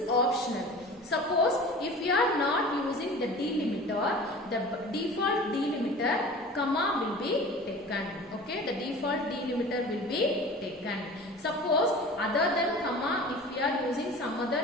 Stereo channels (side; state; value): both; normal; correlation 0.39